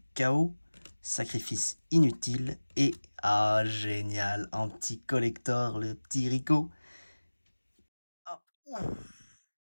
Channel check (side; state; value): both; inverted; correlation -1.00